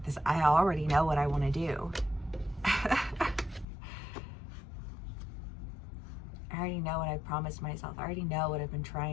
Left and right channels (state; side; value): drops out; right; at 3.7 s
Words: this, I already know what I want to do. I already know what I promised myself. I already know what I've been